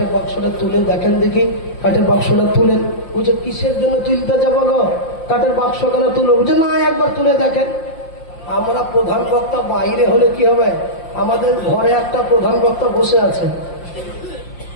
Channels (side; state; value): right; late; 5.7 ms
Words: বাক্সটা তুলে দেখেন দেখি। কাঠের বাক্সটা তুলেন। বুঝে কিসের জন্য তুলতে যাবো গো, কাঠের বাক্স কেন তুলো? বুঝে না, একবার তুলে দেখেন। আমরা প্রধান বক্তা বাইরে হলে কি হবে, আমাদের ঘরে একটা প্রধান বক্তা বসে আছে,